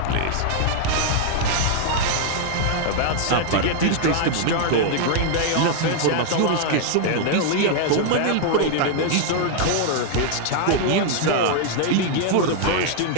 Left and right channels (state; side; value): different; both; correlation 0.00